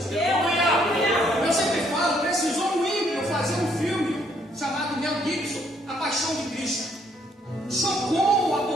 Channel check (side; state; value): both; normal; correlation 0.68